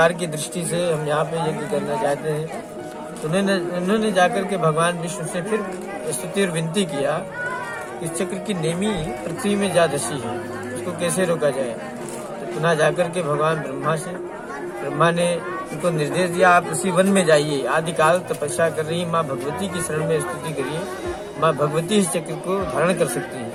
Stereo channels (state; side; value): identical; both; correlation 1.00